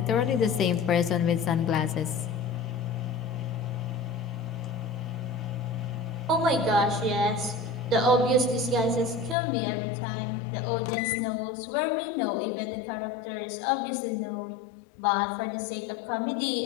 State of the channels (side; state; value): right; drops out; at 9.3 s